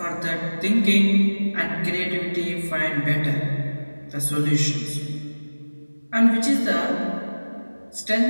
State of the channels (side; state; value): both; inverted; correlation -1.00